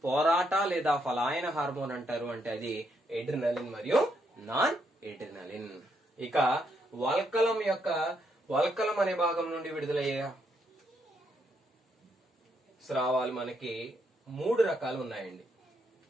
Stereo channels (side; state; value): both; normal; correlation 0.76